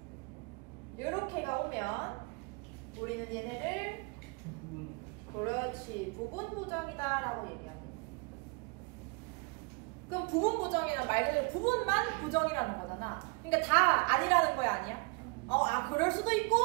이렇게가 오면 우리는 얘네를 그렇지 부분 부정이다 라고 얘기합니다. 그럼 부분 부정이란 말 그대로 부분만 부정이라는 거잖아. 그러니까 다 아니라는 거야, 아니야? 그럴 수도 있고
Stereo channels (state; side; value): quieter; left; 29.8 dB